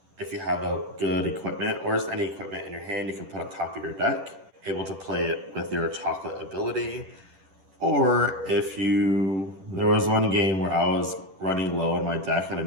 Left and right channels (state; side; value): late; left; 10 ms